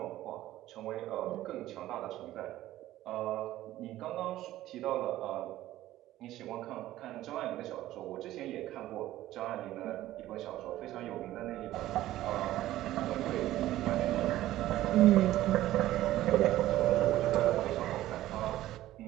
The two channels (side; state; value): left; quieter; 14.7 dB